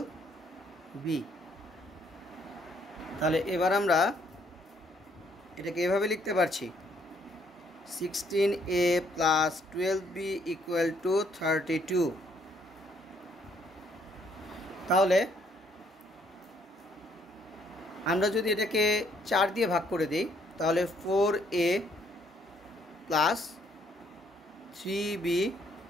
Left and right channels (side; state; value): both; normal; correlation 0.67